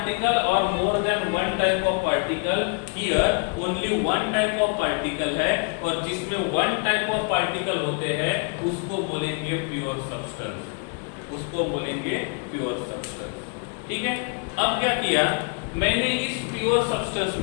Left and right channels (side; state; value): right; quieter; 37.8 dB